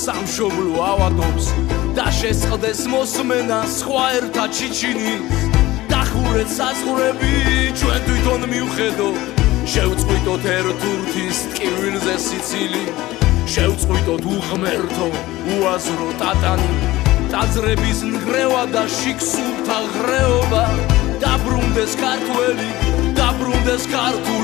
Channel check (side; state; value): right; quieter; 17.6 dB